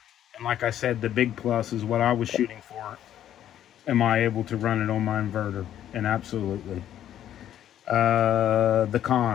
And like I said, the big plus is what I was shooting for. Am I able to run it on my inverter? And absolutely. The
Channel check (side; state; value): right; quieter; 11.1 dB